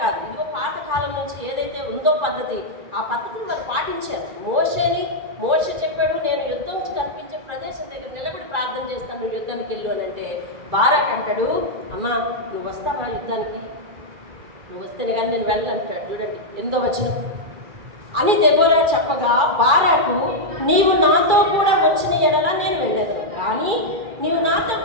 కాదు. ఇదిగో పాత కాలం నుంచి ఏదైతే ఉందో పద్ధతి, ఆ పద్ధతిని వాళ్ళు పాటించారు. మోషే చెప్పాడు, నేను యుద్ధం కనిపించే ప్రదేశం దగ్గర నిలబడి ప్రార్థన చేస్తాను, నువ్వు యుద్ధానికి వెళ్ళు అని అంటే బారాక్ అంటాడు, అమ్మా నువ్వు వస్తావా యుద్ధానికి? నువ్వు వస్తేనే కానీ నేను వెళ్ళాలంటాడు. చూడండి 8వ వచనం. అని దెబోరా చెప్పగా బారాకు, నీవు నాతో కూడా వచ్చిన ఎడల నేను వెళ్ళదు, కానీ నీవు నాతో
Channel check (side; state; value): left; late; 2.3 ms